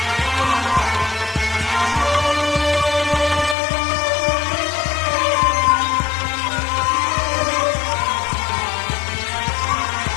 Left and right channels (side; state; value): right; drops out; at 3.6 s